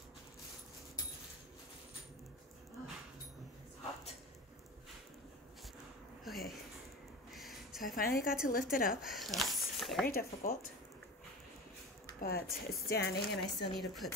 Oh, it's hot. Okay, so I finally got to lift it up. That was very difficult, but it's standing, and I still need to put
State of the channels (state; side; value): normal; both; correlation 0.31